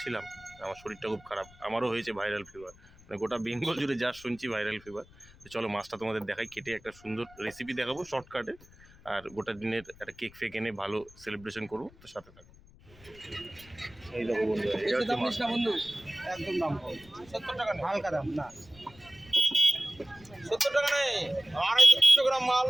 আমার শরীরটা খুব খারাপ, আমারও হয়েছে ভাইরাল ফিভার। মানে গোটা বেঙ্গল জুড়ে যা শুনছি ভাইরাল ফিভার। তো চলো মাছটা তোমাদের দেখাই, কেটে একটা সুন্দর রেসিপি দেখাবো শর্টকাটে। আর গোটা দিনের একটা কেক ফেক এনে ভালো সেলিব্রেশন করবো। তো সাথে থাকো। এই দেখো বন্ধু, এটা হচ্ছে মাছ। বন্ধু একদম দাম কম, 70 টাকা হালকা দাম না, 70 টাকা নেই। 250 গ্রাম মাল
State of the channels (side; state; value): left; noise; rumble, 24 dB below the sound